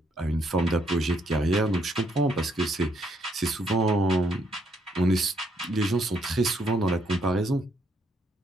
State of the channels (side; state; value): both; normal; correlation 0.72